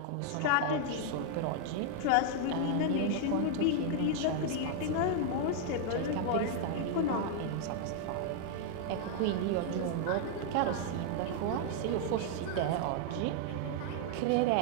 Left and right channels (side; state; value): both; different; correlation 0.00